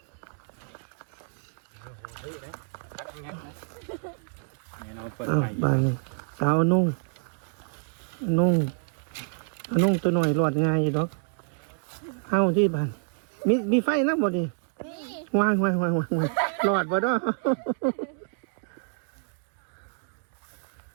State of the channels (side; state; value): left; silent; 59 dB below the other